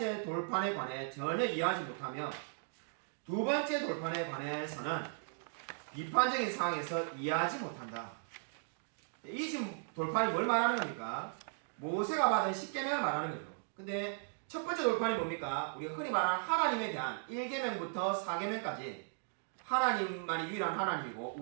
돌판에 관해 전혀 이해하지 못하며 두 번째 돌판에 관해서는 비판적인 상황에서 이해하지 못한다. 이 지금 돌판이 뭘 말하는 겁니까? 모세가 받은 10계명을 말하는 거죠. 근데 첫 번째 돌판이 뭡니까? 우리가 흔히 말하는 하나님에 대한 1계명부터 4계명까지 하나님만이 유일한 하나님이고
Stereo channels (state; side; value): silent; left; digital silence